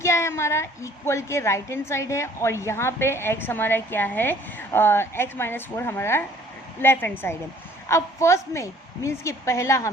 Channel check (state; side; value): normal; both; correlation 0.55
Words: है हमारा, इक्वल के राइट हैंड साइड है, और यहाँ पे x हमारा क्या है, x - 4 हमारा लेफ्ट हैंड साइड है। अब फर्स्ट में मीन्स कि पहला